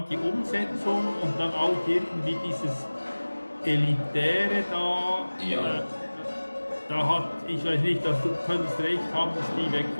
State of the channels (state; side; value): inverted; both; correlation -1.00